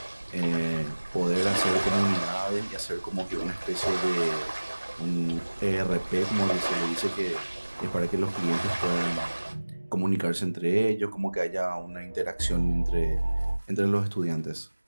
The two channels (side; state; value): both; inverted; correlation -1.00